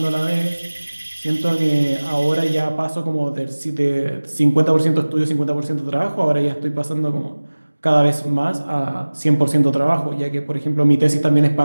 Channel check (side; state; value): both; inverted; correlation -1.00